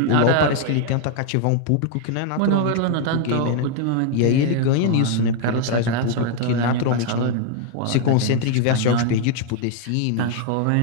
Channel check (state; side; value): different; both; correlation 0.00